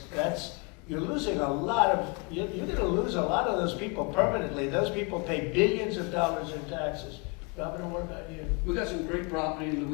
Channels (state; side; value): quieter; right; 32.1 dB